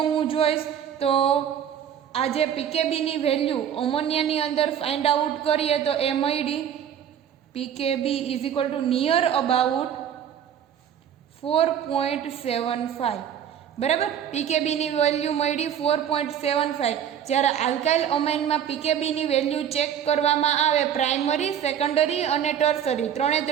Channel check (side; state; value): left; quieter; 9.2 dB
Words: હું જોઈશ તો આ જે પીકેબીની વેલ્યુ અમોનિયાની અંદર ફાઇન્ડ આઉટ કરીએ તો એ મળી pKb is equal to near about 4.75. બરાબર. પીકેબીની વેલ્યુ મળી 4.75. જ્યારે આલ્કાઇલ અમાઇનમાં પીકેબીની વેલ્યુ ચેક કરવામાં આવે પ્રાઇમરી, સેકન્ડરી અને ટર્સરી,